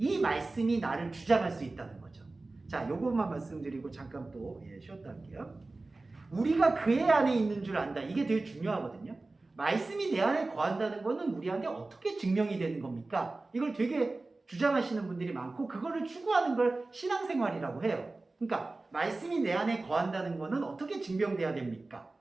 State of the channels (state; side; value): quieter; left; 3.3 dB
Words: 말씀이 나를 주장할 수 있다는 거죠. 자, 요것만 말씀드리고 잠깐 또 쉬었다 할게요. 우리가 그의 안에 있는 줄 안다. 이게 되게 중요하거든요. 말씀이 내 안에 거한다는 거는 우리한테 어떻게 증명이 되는 겁니까? 이걸 되게 주장하시는 분들이 많고 그거를 추구하는 걸 신앙생활이라고 해요. 그러니까 말씀이 내 안에 거한다는 거는 어떻게 증명돼야 됩니까?